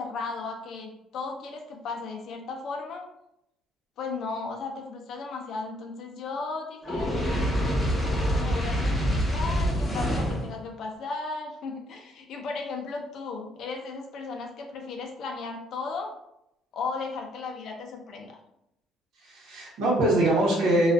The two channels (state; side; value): normal; both; correlation 0.66